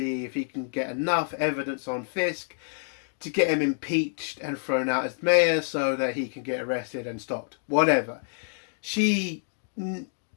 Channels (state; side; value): silent; right; digital silence